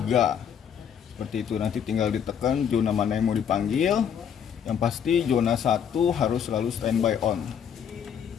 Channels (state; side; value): quieter; right; 8.2 dB